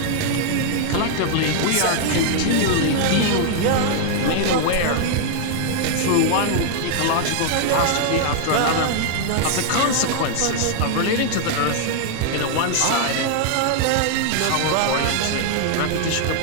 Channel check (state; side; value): different; both; correlation 0.00